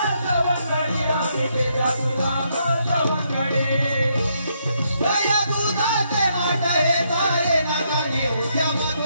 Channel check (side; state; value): both; inverted; correlation -0.76